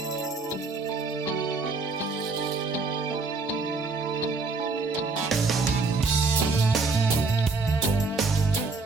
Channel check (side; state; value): left; quieter; 4.1 dB